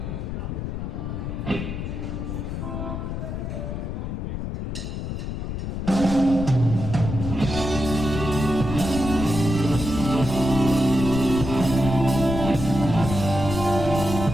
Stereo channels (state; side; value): noise; left; rumble, 4 dB below the sound